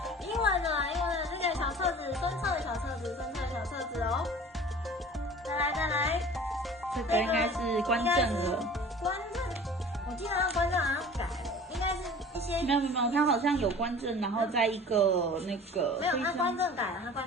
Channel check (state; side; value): normal; both; correlation 0.43